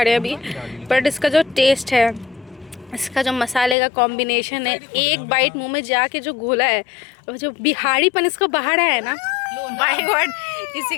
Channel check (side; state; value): right; drops out; at 3.8 s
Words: रहे हैं अभी, बट इसका जो टेस्ट है, इसका जो मसाले का कॉम्बिनेशन है, एक बाइट मुंह में जाके जो घोला है और जो बिहारीपन इसको बाहर आया है ना, माय गॉड, इसी